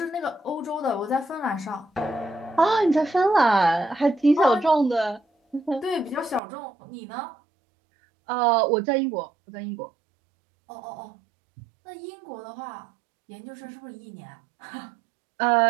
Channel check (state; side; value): drops out; left; at 6.4 s